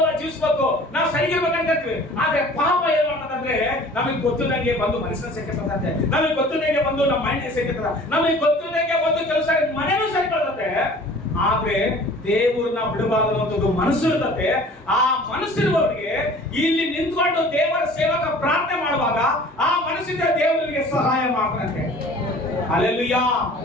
ಜೀವಿಸ್ಬೇಕು, ನಾವು ಸರಿಗಿರ್ಬೇಕಂತೀವಿ. ಆದ್ರೆ ಪಾಪ ಏನ್ ಮಾಡ್ತದಂದ್ರೆ ನಮಗೆ ಗೊತ್ತಿಲ್ಲಂಗೆ ಬಂದು ಮನಸ್ಸನ್ನ ಸೇರ್ಕತ್ತಂತೆ, ನಮಗೆ ಗೊತ್ತಿಲ್ಲಂಗೆ ಬಂದು ನಮ್ಮ ಮೈಂಡ್ ಸೇರ್ಕತ್ತದ, ನಮಗೆ ಗೊತ್ತಿಲ್ಲಂಗೆ ಬಂದು ಕೆಲಸ ಮನೆನೂ ಸೇರ್ಕೊಳ್ತದೆ. ಆದ್ರೆ ದೇವರನ್ನ ಬಿಡಬಾರದು ಅನ್ನೋದು ಮನಸ್ಸು ಇರ್ತದೆ. ಆ ಮನಸ್ಸಿರುವವರಿಗೆ ಇಲ್ಲಿ ನಿಂತ್ಕೊಂಡು ದೇವರ ಸೇವಕ ಪ್ರಾರ್ಥನೆ ಮಾಡುವಾಗ ಆ ಮನಸ್ಸಿಂದ ದೇವರಿಗೆ ಸಹಾಯ ಮಾಡ್ತಾನಂತೆ. ಹಲ್ಲೆಲೂಯಾ.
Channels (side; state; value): both; normal; correlation 0.47